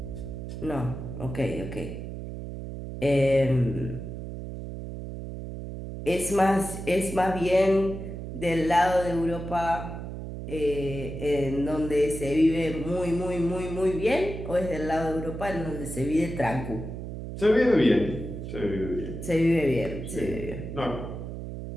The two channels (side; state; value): right; noise; hum, 8 dB below the sound